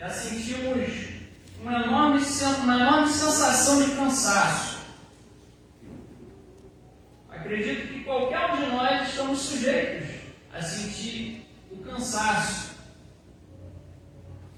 sentimos uma enorme sensação de cansaço. Acredito que qualquer um de nós estamos sujeitos a sentir o cansaço.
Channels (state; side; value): identical; both; correlation 1.00